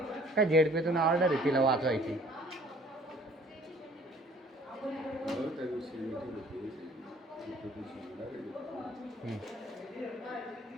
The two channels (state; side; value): normal; both; correlation 0.55